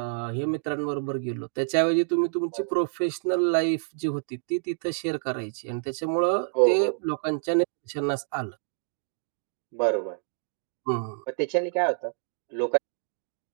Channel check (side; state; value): left; silent; digital silence